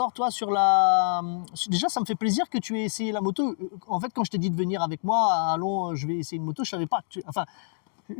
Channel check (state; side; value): silent; right; digital silence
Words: toi, sur la... Déjà, ça me fait plaisir que tu aies essayé la moto. En fait, quand je t'ai dit de venir avec moi, allons, je vais essayer une moto, je savais pas que